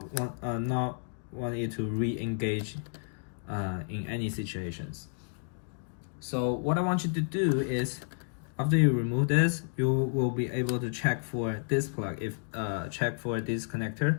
want it to re-engage in any situations. So what I want you to do is, after you remove this, you will be able to check for this plug, check for this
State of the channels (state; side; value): silent; right; digital silence